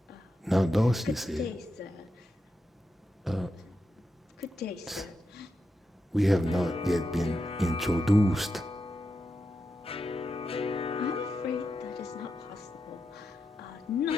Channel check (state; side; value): normal; both; correlation 0.87